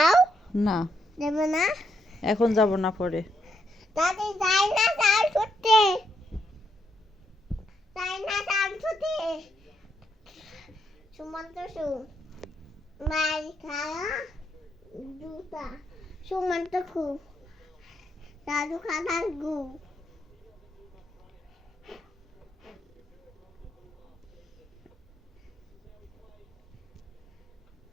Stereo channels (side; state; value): both; normal; correlation 0.78